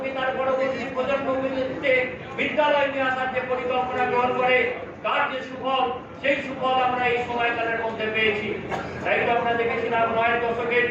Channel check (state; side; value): identical; both; correlation 1.00